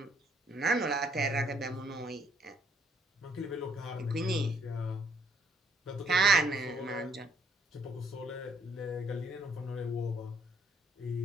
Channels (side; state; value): both; normal; correlation 0.67